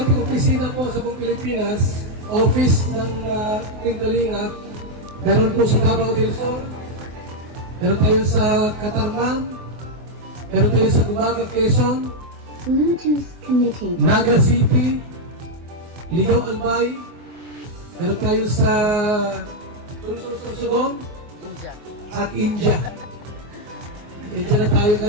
ating opisina po sa buong Pilipinas, office ng Team Kalinga. Meron po sa Davao del Sur, meron tayo sa Catarman, meron tayo sa Gumaga, Quezon, Naga City, Ligaw, Albay, meron tayo sa Sursugong at India. India na tayo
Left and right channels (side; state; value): left; late; 24 ms